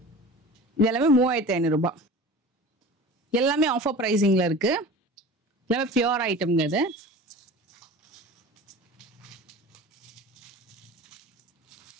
இது எல்லாமே 3,500 ரூபாய். எல்லாமே ஆஃபர் பிரைசிங்ல இருக்கு. எல்லாமே பியூர் ஐட்டம்ங்க. இது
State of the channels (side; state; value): both; normal; correlation 0.38